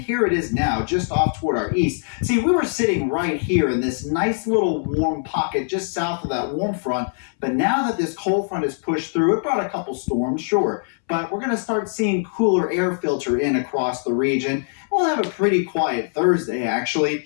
it is now, just off toward our east. See, we were sitting right here in this nice little warm pocket just south of that warm front, but now that this cold front has pushed through, it brought a couple storms, sure, but we're going to start seeing cooler air filter in across the region. We'll have a pretty quiet Thursday, actually.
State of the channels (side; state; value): right; silent; 64 dB below the other